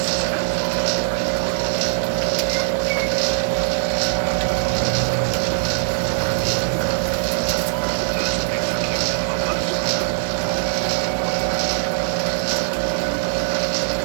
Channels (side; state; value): left; silent; digital silence